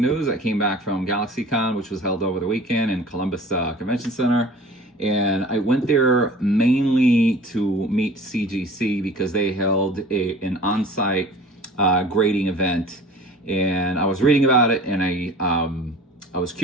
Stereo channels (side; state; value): both; normal; correlation 0.44